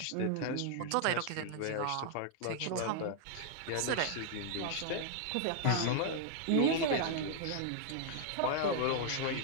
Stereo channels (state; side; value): different; both; correlation 0.00